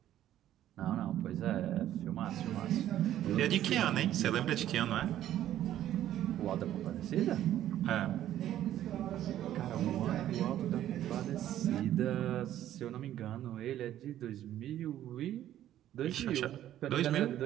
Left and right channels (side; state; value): left; quieter; 12.2 dB